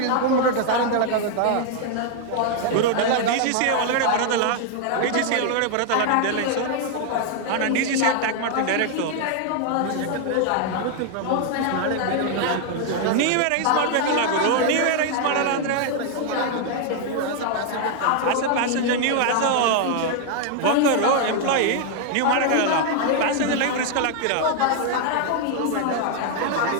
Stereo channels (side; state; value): both; different; correlation 0.00